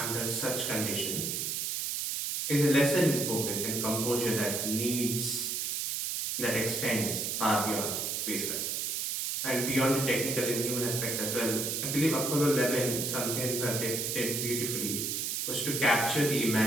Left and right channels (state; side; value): noise; right; hiss, 1 dB below the sound